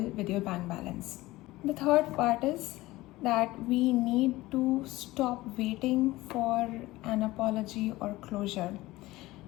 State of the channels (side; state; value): right; quieter; 18.6 dB